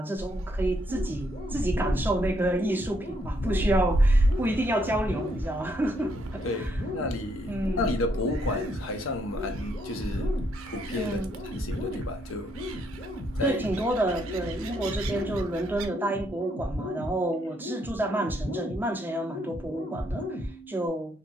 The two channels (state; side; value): normal; both; correlation 0.73